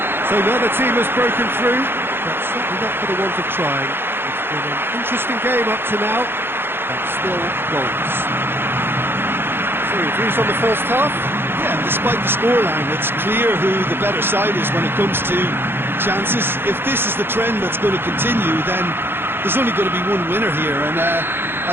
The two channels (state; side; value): late; left; 0.10 ms